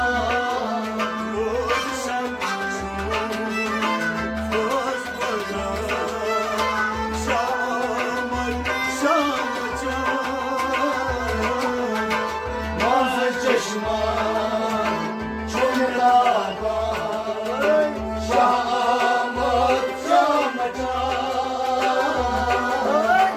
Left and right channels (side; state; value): both; identical; correlation 1.00